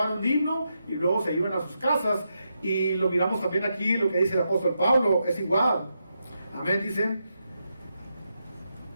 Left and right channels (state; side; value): inverted; both; correlation -0.84